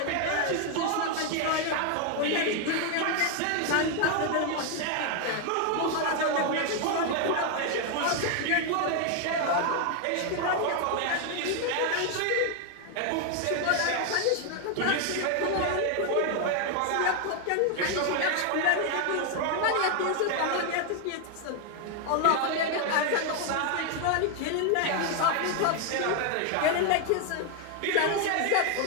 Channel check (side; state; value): both; different; correlation 0.01